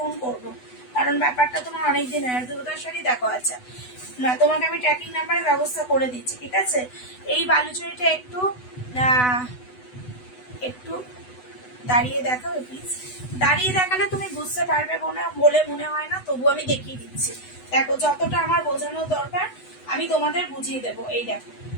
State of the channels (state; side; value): late; right; 8.0 ms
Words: করবো, কারণ ব্যাপারটা তোমার অনেকদিন হয়। দুর্গা শাড়ি দেখো, আচ্ছা না তোমাকে আমি ট্র্যাকিং নাম্বারের ব্যবস্থা করে দিচ্ছি, ঠিক আছে। এই বালুচুরিটা একটু একটু দাঁড়িয়ে দেখাবে প্লিজ, দাঁড়িয়ে দেখালে তুমি বুঝতে পারবে বলে মনে হয় না, তবু আমি দেখিয়ে দিচ্ছি। দেখো যতটা আমার বোঝানোর দরকার আমি তোমাদের বুঝিয়ে দেবো। এই দেখো